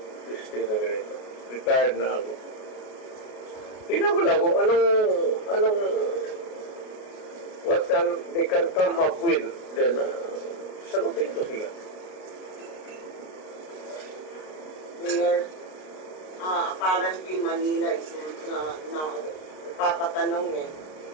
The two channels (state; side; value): late; right; 32 ms